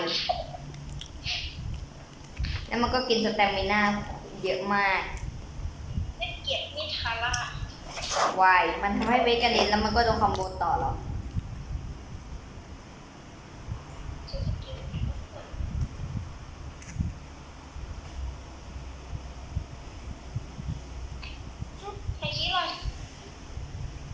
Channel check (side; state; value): both; identical; correlation 1.00